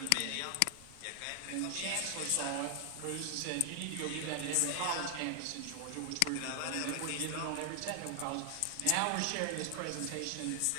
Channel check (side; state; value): both; different; correlation 0.00